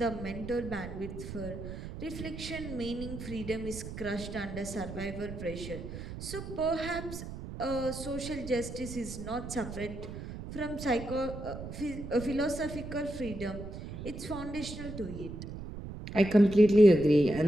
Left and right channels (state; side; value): noise; right; rumble, 9 dB below the sound